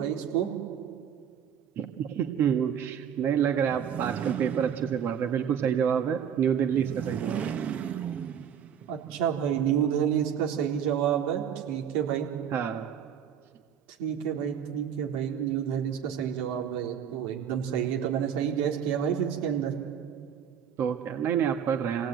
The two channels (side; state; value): left; quieter; 8.5 dB